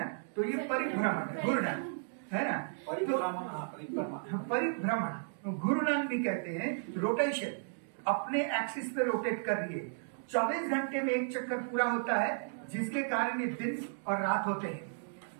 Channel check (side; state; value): left; silent; digital silence